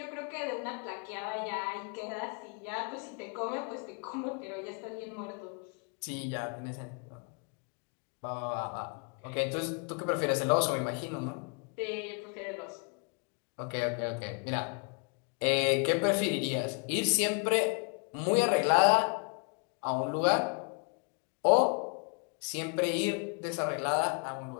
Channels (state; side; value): quieter; right; 37.6 dB